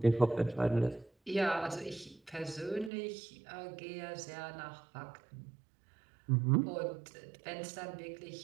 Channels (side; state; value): left; drops out; at 2.9 s